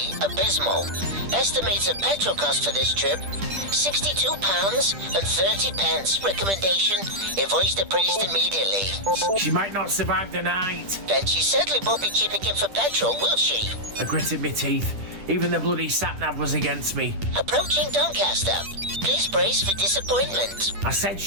abysmal. Estimated petrol cost for this trip, £62.30. Recommendation, invoice the priest immediately. She might not survive the night. Then she certainly won't be chipping in for petrol, will she? I gritted my teeth. Even the bloody sat-nav was against me. Approaching Doncaster. Please brace for disappointment. I said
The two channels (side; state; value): left; late; 10 ms